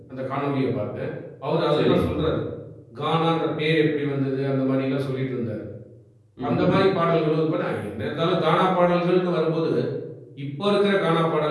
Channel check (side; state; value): both; identical; correlation 1.00